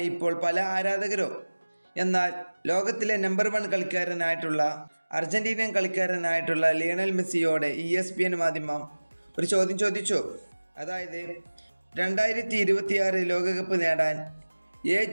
ഇപ്പോൾ പല ആരാധകരും. എന്നാൽ ലോകത്തിലെ നമ്പർ 1 കളിക്കാരനായിട്ടുള്ള അർജന്റീനിയൻ കളിക്കാരനായിട്ടുള്ള ലിയണൽ മെസ്സിയോട് ESPN മാധ്യമം ഒരു ചോദ്യം ചോദിച്ചു. അതായത് 2026 ലോകകപ്പ് നേടാൻ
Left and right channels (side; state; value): both; inverted; correlation -1.00